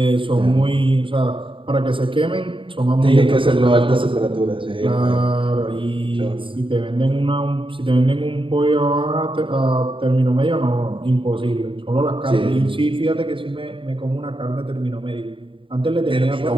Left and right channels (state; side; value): late; left; 0.25 ms